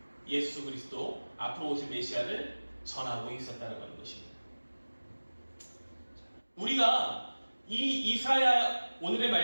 예수 그리스도 앞으로 오실 메시아를 전하고 있었다고 하는 것입니다. 우리가 이 이사야 오늘의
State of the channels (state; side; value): inverted; both; correlation -1.00